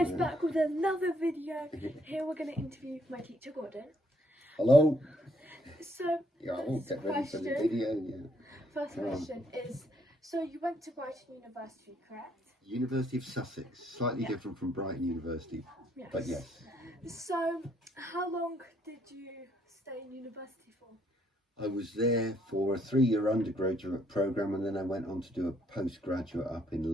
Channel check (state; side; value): normal; both; correlation 0.69